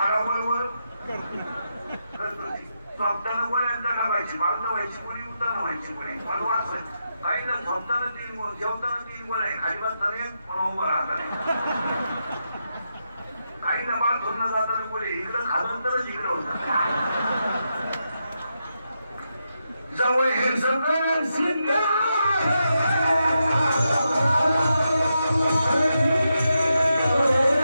झोपताना गोळ्यांचा टाकायची. बांधणं व्हायची कोणी उताना व्हायची कोणी मला वाचवायची. काही ना झोपताना 3 गोळ जेवताना 3 गोळ आहे. खाली बसताना एक पण उभं राहता नाही. काही ना बाळ धुणं जाताना गोळे इकडं खालं तरच इकडं होतं. जवळ हे सगळं सिद्ध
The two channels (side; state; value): both; inverted; correlation -0.85